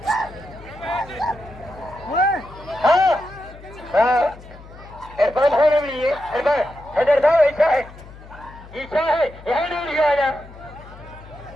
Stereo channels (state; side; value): noise; left; hum, 19 dB below the sound